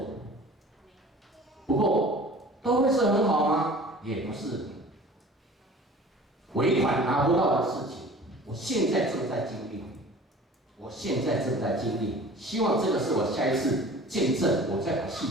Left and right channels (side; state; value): both; normal; correlation 0.44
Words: 不过都会是很好吗？也不是。尾款拿不到的事情，我现在正在经历，希望这个是我下一次见证，我再把细